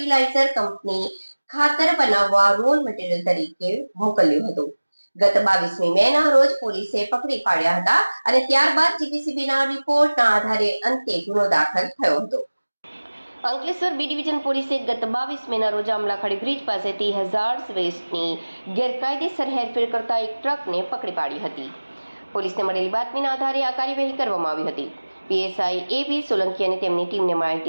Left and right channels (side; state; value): both; inverted; correlation -1.00